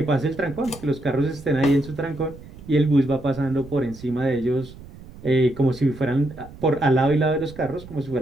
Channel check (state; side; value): noise; right; rumble, 18 dB below the sound